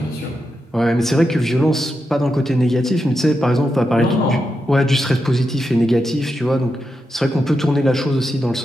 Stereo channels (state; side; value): normal; both; correlation 0.87